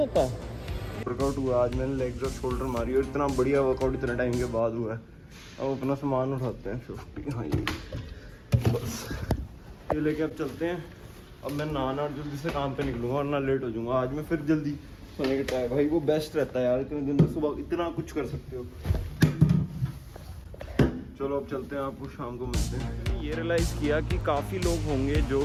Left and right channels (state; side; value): identical; both; correlation 1.00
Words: वर्कआउट हुआ आज, मैंने लेग्स और शोल्डर मारी, और इतना बढ़िया वर्कआउट इतने टाइम के बाद हुआ है। अब अपना सामान उठाते हैं 50। हाँ ये बस ये लेके अब चलते हैं। अब मैं नहाना और जल्दी से काम पे निकलूंगा, और ना लेट हो जाऊंगा। आज मैं फिर जल्दी सोने का ट्राई, भाई वो बेस्ट रहता है यार, इतने दिन में सुबह इतना कुछ कर सकते हो। चलो अब चलते हैं, आपको शाम को मिलते हैं। ये रियलाइज़ किया कि काफ़ी लोग होंगे जो